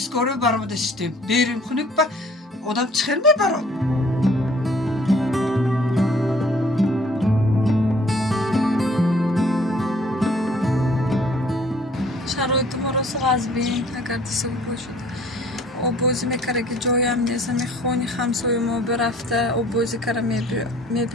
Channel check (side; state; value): both; normal; correlation 0.55